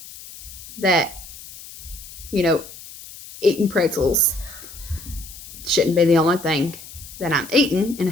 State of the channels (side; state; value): left; noise; hiss, 16 dB below the sound